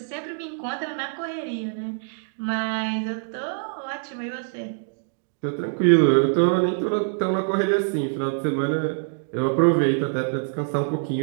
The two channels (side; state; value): left; silent; digital silence